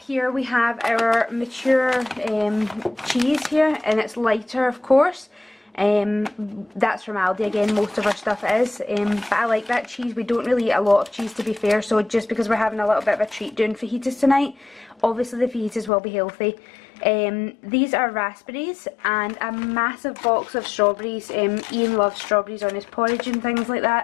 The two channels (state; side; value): drops out; right; at 15.9 s